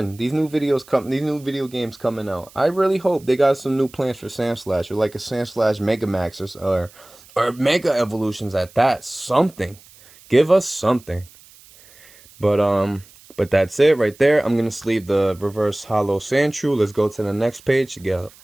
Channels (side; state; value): right; noise; hiss, 25 dB below the sound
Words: These new video games coming out. I really hope they got some new plans for Sandslash, or like a Sandslash Megamax, or Mega Evolutions at that. Something. Give us something. But that's it right there. I'm gonna sleeve the reverse hollow Sandshrew. Let's go to the next page to get